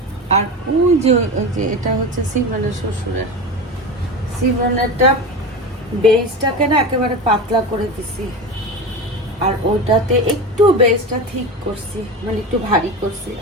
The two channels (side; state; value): both; normal; correlation 0.25